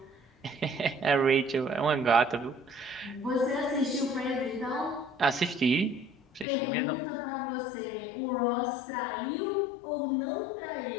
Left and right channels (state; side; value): drops out; right; at 6.5 s